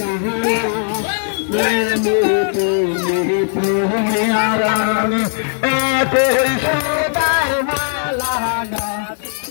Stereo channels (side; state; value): right; silent; digital silence